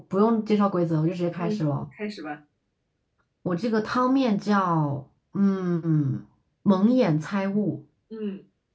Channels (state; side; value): identical; both; correlation 1.00